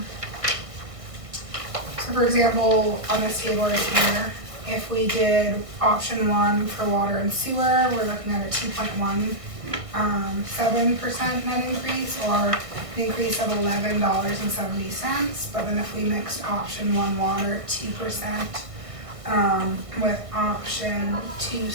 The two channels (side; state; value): left; late; 1.6 ms